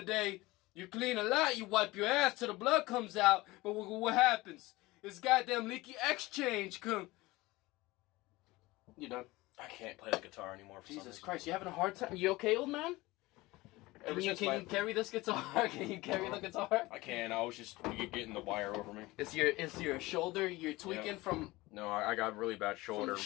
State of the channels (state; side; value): quieter; right; 20.4 dB